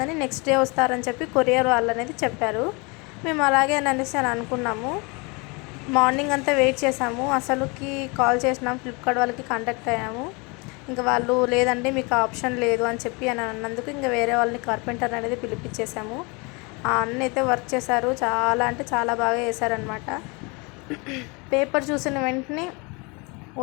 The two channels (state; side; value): quieter; right; 29.2 dB